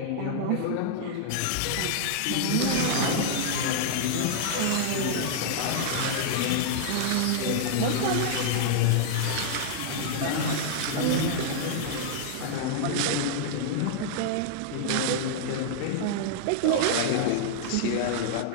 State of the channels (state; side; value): different; both; correlation -0.01